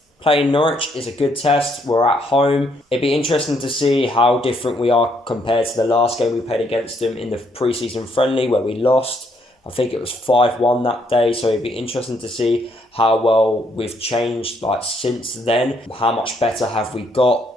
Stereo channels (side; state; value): both; normal; correlation 0.71